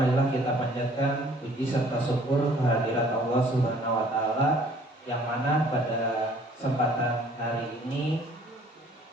kita panjatkan puji serta syukur kehadirat Allah Subhanahu wa taala yang mana pada kesempatan hari ini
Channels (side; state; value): both; normal; correlation 0.56